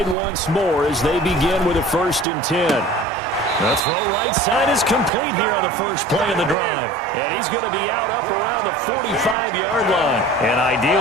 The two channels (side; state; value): both; normal; correlation 0.42